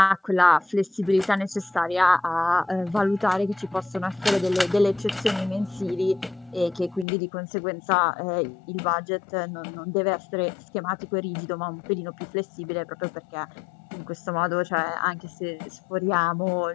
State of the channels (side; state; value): right; drops out; at 7.1 s